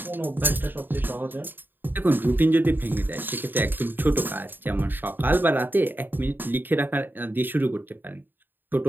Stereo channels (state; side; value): late; left; 0.093 ms